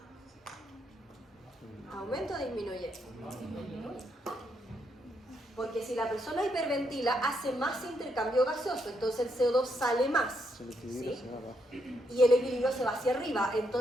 ¿Aumenta o disminuye? Porque si la persona hiperventila, hace más intercambio gaseoso, entonces el CO2 sale más. El equilibrio ¿sí? se va abajo. Y el equilibrio se va hacia arriba,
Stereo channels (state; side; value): normal; both; correlation 0.78